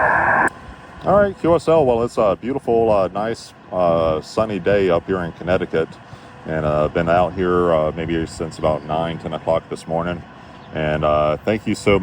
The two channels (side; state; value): both; identical; correlation 1.00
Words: All right, QSL. Well, it's a beautiful, nice, sunny day up here in Connecticut. And I've been out here maybe since about 9-10 o'clock this morning. And thank you so